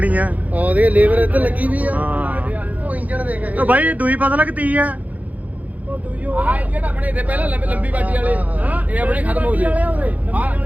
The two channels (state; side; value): late; left; 0.076 ms